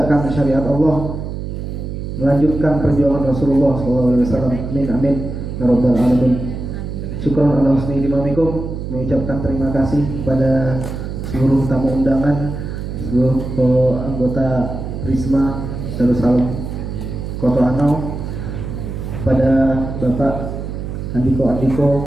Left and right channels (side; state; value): right; noise; hum, 6 dB below the sound